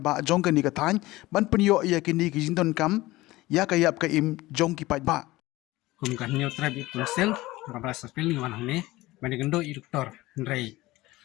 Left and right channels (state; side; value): quieter; right; 18.8 dB